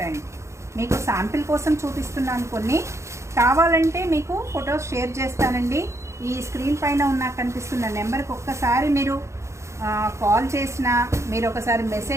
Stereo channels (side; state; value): left; late; 0.14 ms